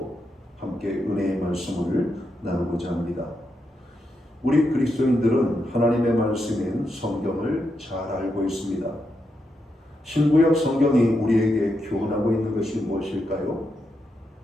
함께 은혜의 말씀을 나누고자 합니다. 우리 그리스도인들은 하나님의 말씀인 성경을 잘 알고 있습니다. 신구약 성경이 우리에게 교훈하고 있는 것이 무엇일까요?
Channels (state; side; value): normal; both; correlation 0.84